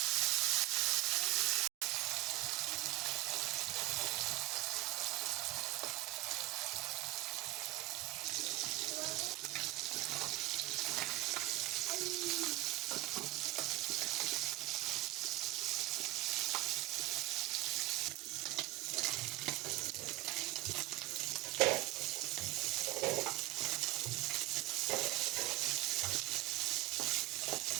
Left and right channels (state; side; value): quieter; left; 17.7 dB